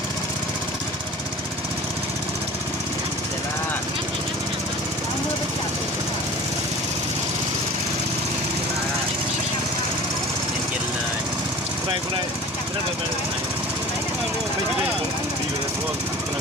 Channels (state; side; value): normal; both; correlation 0.41